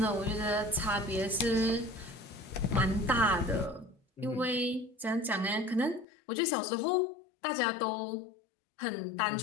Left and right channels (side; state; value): right; drops out; at 6.1 s